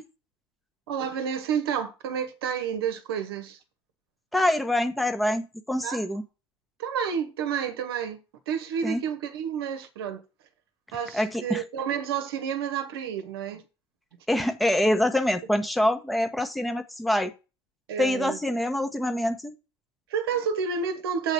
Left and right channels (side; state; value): both; normal; correlation 0.68